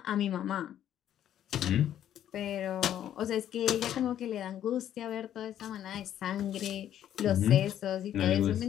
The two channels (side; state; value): right; quieter; 10.9 dB